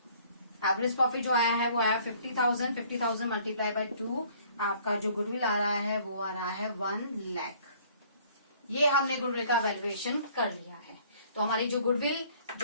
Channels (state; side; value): inverted; both; correlation -0.57